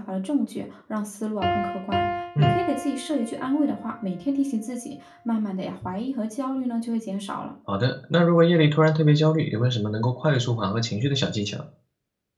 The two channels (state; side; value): identical; both; correlation 1.00